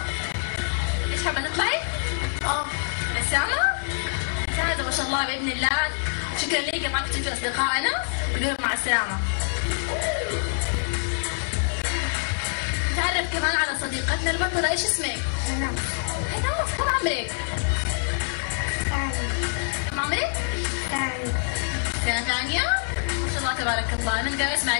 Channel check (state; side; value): silent; right; digital silence